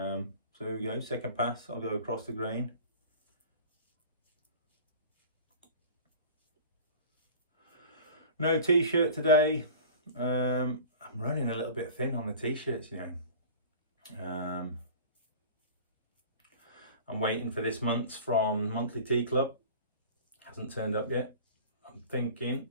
So here we go, second pass, I'll go across the grain. No t-shirt today. I'm running a little bit thin on the t-shirts, you know. I'm waiting for this month's from Monthly Tea Club. Hasn't turned up yet. I'm thinking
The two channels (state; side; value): inverted; both; correlation -0.40